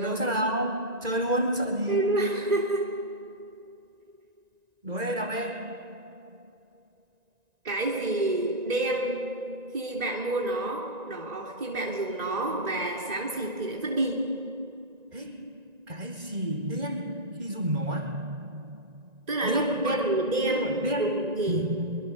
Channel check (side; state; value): left; late; 1.9 ms